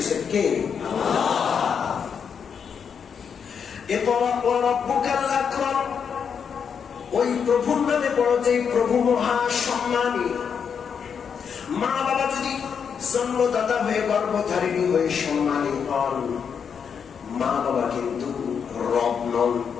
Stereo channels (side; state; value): right; quieter; 6.9 dB